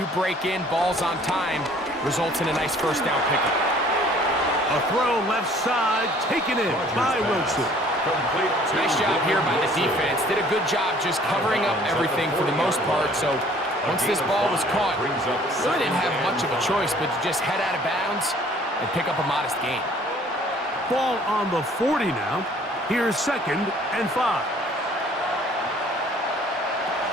break in, balls on time, results in a nice first down pickup. A throw left side, taken in by Wilson. Nice job here by the defense. Did a good job just covering up everything for the most part. So once this ball was caught, really didn't have much of a choice but to just head out of bounds and pick up a modest gain. Ball on the 40 now. Here's second and 5.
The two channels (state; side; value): normal; both; correlation 0.55